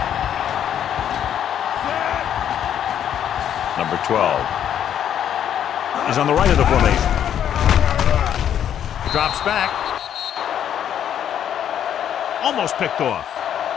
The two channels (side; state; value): right; quieter; 9.7 dB